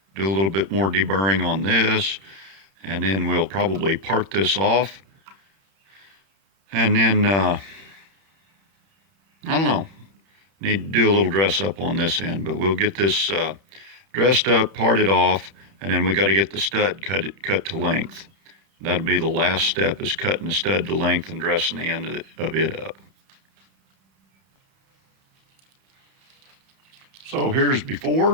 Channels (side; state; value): left; late; 31 ms